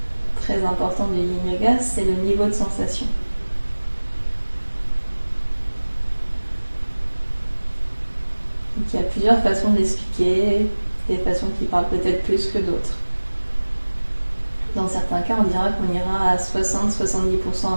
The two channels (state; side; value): inverted; both; correlation -1.00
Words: très important du Yin Yoga, c'est le niveau de sensation. Donc, il y a plusieurs façons de l'expliquer, des façons qui parlent peut-être plus que d'autres. Dans certains cas, on dira qu'on ira à 60-70%